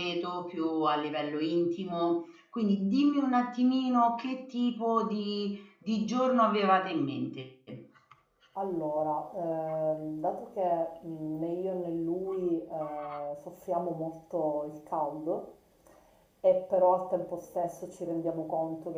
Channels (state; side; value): identical; both; correlation 1.00